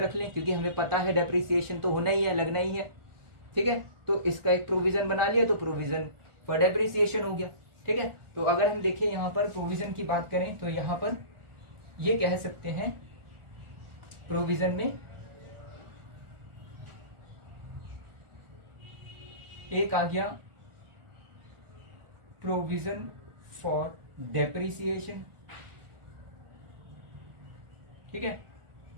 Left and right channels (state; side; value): late; left; 1.4 ms